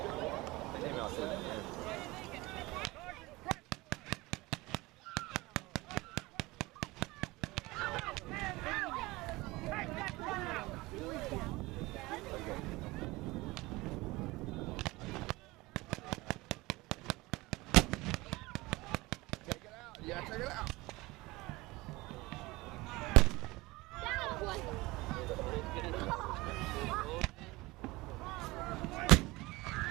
The email said it. Take it out. Yeah, check it out.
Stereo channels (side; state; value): left; quieter; 21.4 dB